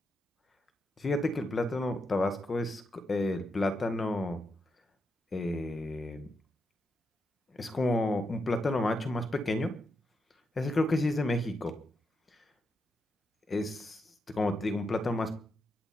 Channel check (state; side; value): normal; both; correlation 0.84